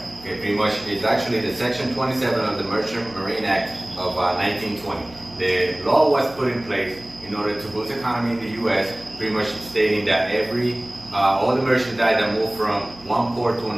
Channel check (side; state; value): right; noise; hum, 21 dB below the sound